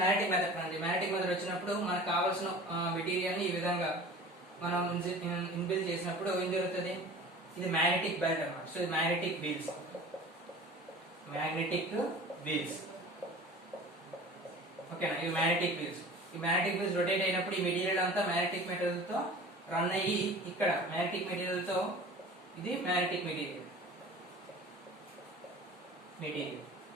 మ్యాగ్నెటిక్ మెథడ్ అండి. మ్యాగ్నెటిక్ మెథడ్ వచ్చినప్పుడు మనకు కావాల్సిన మెటీరియల్ ని ఈ విధంగా మనం ఇన్బిల్డ్ చేసినప్పుడు ఏం జరుగుతుంది, ఇది మ్యాగ్నెటిక్ బెల్ట్ అన్నమాట. సో ఇది మ్యాగ్నెటిక్ వీల్స్. ఓకేనా, ఇవి మ్యాగ్నెటిక్ వీల్స్. ఈ మ్యాగ్నెటిక్ వీల్స్ రొటేట్ అయినప్పుడు ఈ మెటీరియల్ అంతా మ్యాగ్నెటిక్ మెటీరియల్ తో రన్ అయ్యి ఇక్కడ మ్యాగ్నెటిక్ మెటీరియల్ తో ఇది మ్యాగ్నెటిక్ మెటీరియల్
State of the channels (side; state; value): both; normal; correlation 0.40